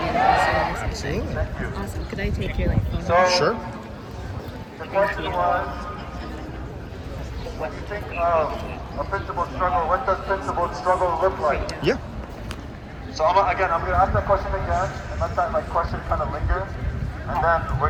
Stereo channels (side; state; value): both; identical; correlation 1.00